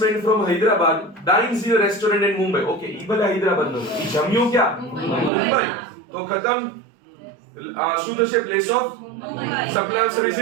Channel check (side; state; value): left; drops out; at 5.3 s